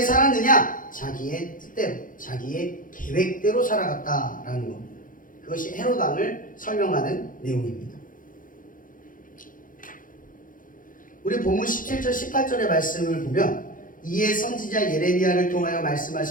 살았느냐? 자기의 뜻대로, 자기의 계획대로 살아갔다라는 겁니다. 그것이 헤롯 왕을 설명하는 내용입니다. 우리 본문 17절 18절의 말씀을 보면 이에 선지자 예레미야를 통하여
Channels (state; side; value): late; right; 0.39 ms